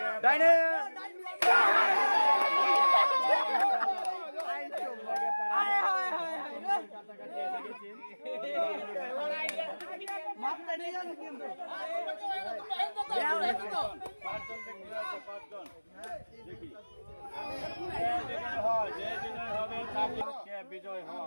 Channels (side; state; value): both; inverted; correlation -1.00